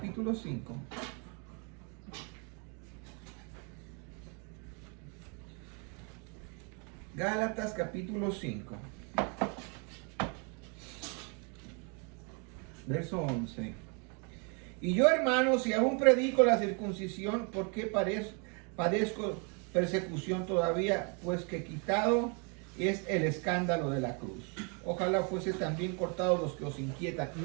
5. Gálatas capítulo 5. Verso 11. Y yo, hermanos, si aún predico la circuncisión, ¿por qué padezco persecución todavía? Pues que quitado es el escándalo de la cruz. Ojalá fuese también cortado los que os inquietan.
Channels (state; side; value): quieter; left; 35.5 dB